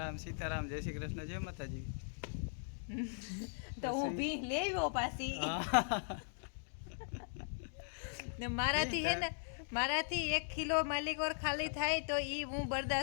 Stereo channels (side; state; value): right; silent; digital silence